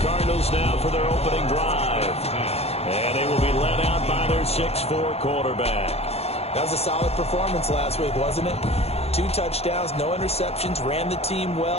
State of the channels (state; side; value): late; right; 0.30 ms